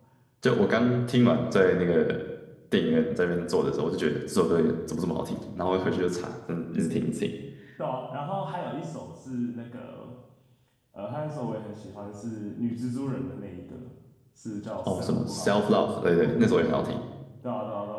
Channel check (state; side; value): identical; both; correlation 1.00